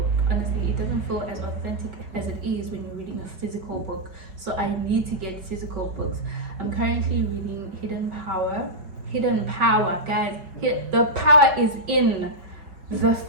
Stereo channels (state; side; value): late; left; 5.2 ms